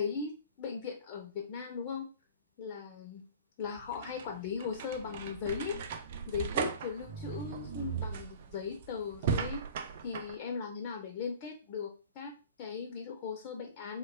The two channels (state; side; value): inverted; both; correlation -0.41